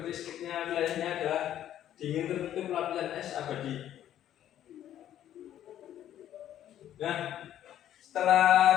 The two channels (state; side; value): quieter; right; 11.4 dB